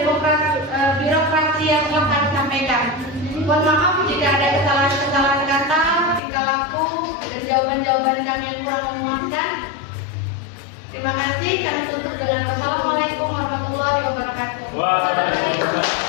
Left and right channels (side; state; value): right; drops out; at 6.2 s